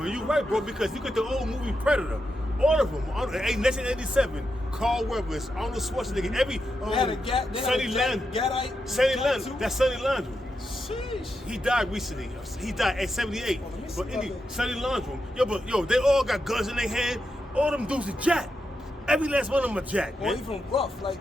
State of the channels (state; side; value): normal; both; correlation 0.86